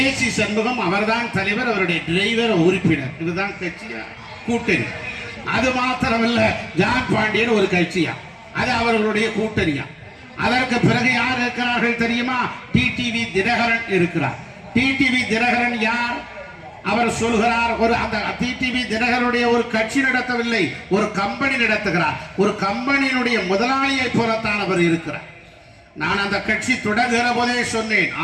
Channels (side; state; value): both; identical; correlation 1.00